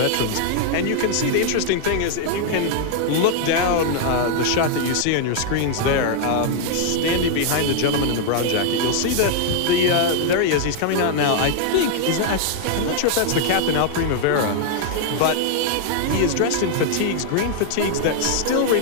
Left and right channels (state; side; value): different; both; correlation 0.00